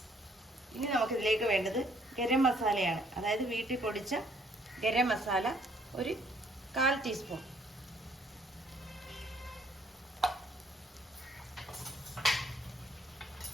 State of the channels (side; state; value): both; normal; correlation 0.64